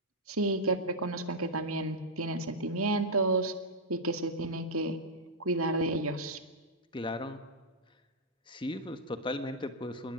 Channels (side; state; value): both; normal; correlation -0.05